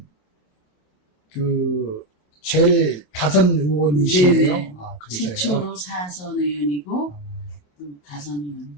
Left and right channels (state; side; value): late; right; 27 ms